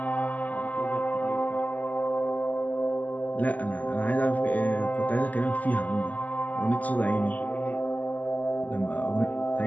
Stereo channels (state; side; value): late; right; 0.078 ms